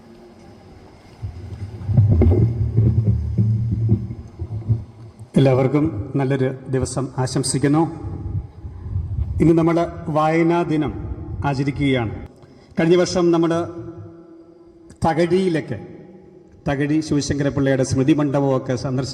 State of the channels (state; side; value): identical; both; correlation 1.00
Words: എല്ലാവർക്കും നല്ലൊരു ദിവസം ആശംസിക്കുന്നു. ഇന്ന് നമ്മൾ വായനാ ദിനം ആചരിക്കുകയാണ്. കഴിഞ്ഞ വർഷം നമ്മൾ തകഴി ശിവശങ്കരപിള്ളയുടെ സ്മൃതി മണ്ഡപമൊക്കെ